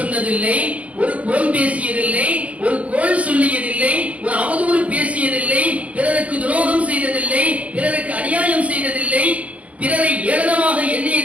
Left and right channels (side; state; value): left; late; 0.066 ms